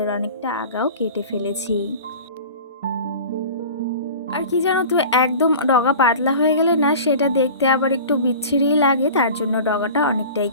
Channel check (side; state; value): both; inverted; correlation -0.38